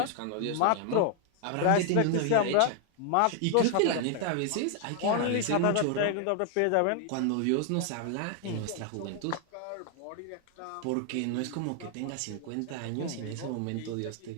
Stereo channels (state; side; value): different; both; correlation 0.00